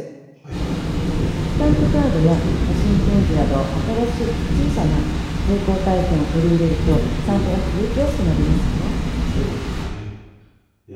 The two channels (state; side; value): identical; both; correlation 1.00